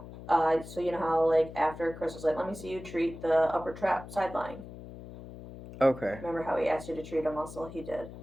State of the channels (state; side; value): noise; left; hum, 14 dB below the sound